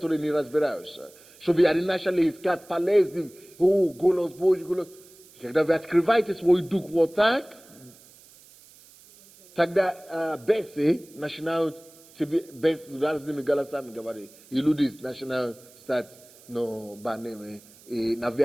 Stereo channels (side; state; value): right; noise; hiss, 24 dB below the sound